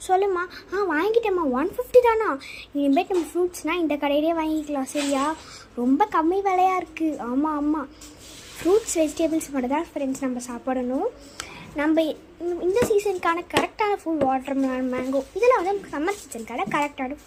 சொல்லுமா. வாங்கிட்டேம்மா. 150 தானா? இனிமேட்டு நம்ம ஃப்ரூட்ஸ்னால் இந்த கடையிலே வாங்கிக்கலாம். சரியா? ரொம்ப கம்மி விலையாக இருக்குது. ஆமாம் ஆமாம், ஃப்ரூட்ஸ் வெஜிடபிள்ஸ் மட்டும் தான் ஃப்ரெண்ட்ஸ் நம்ம சாப்பிடணும். நம்ம இந்த சீசனுக்கான கரெக்டான ஃபுட் வாட்டர் மெலன், மேங்கோ, இதெல்லாம் வந்து சம்மர் சீசனுக்கான கரெக்டான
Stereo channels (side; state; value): both; identical; correlation 1.00